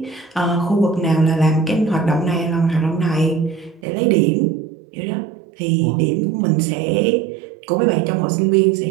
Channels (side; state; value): left; drops out; at 3.9 s